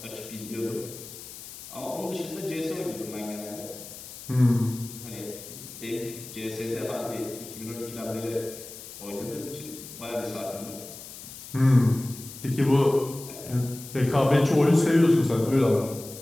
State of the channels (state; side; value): noise; left; hiss, 14 dB below the sound